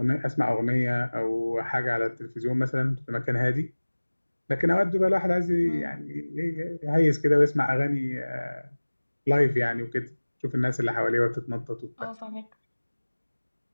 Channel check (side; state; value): both; inverted; correlation -1.00